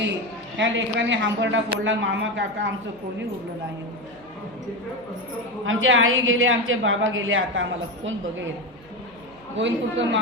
ह्या लेकरांनी हांबरडा फोडला. मामा काका आमचं कोणी उरलं नाही. आमचे आई गेले, आमचे बाबा गेले, आता आम्हाला कोण बघेल? गोविंदपूरकर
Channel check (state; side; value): noise; right; hum, 26 dB below the sound